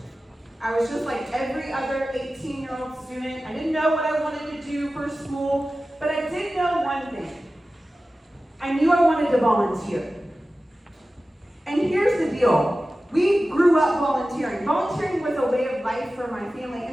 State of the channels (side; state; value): both; normal; correlation 0.95